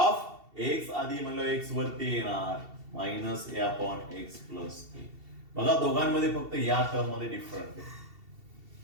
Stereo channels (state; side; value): late; left; 2.7 ms